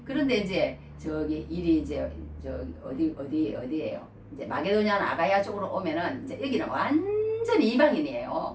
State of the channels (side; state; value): both; identical; correlation 1.00